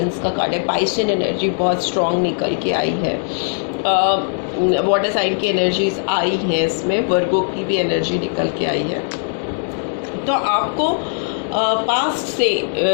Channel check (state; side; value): silent; right; 66 dB below the other